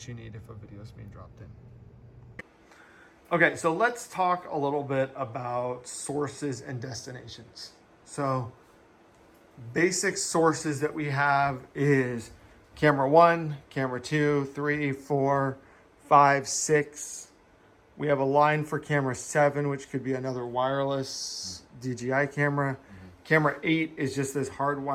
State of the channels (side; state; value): both; identical; correlation 1.00